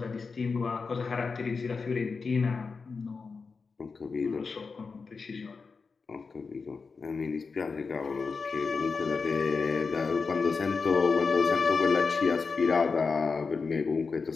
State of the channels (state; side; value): quieter; right; 4.8 dB